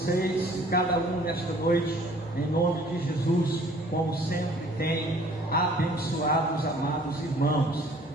de cada um nesta noite, em nome de Jesus, como sempre tem abençoado os amados irmãos.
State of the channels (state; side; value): normal; both; correlation 0.54